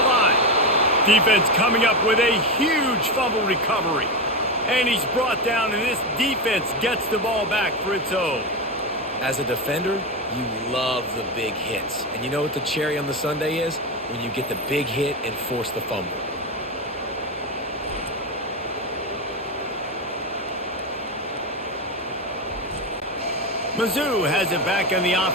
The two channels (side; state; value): both; normal; correlation 0.15